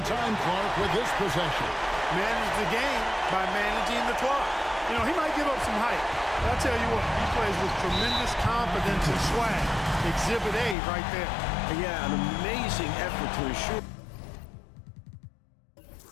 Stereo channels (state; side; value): drops out; right; at 10.8 s